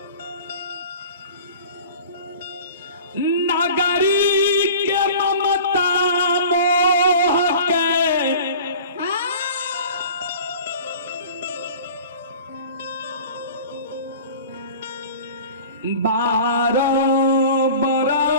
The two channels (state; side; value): inverted; both; correlation -0.42